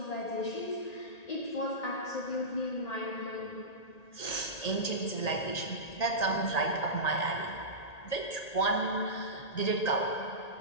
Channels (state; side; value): late; right; 1.8 ms